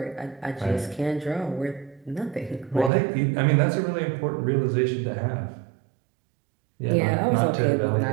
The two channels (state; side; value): drops out; left; at 2.9 s